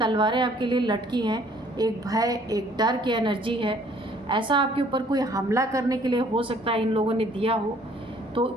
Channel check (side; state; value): both; normal; correlation 0.59